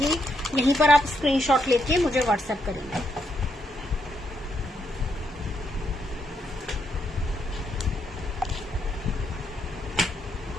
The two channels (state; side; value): normal; both; correlation 0.78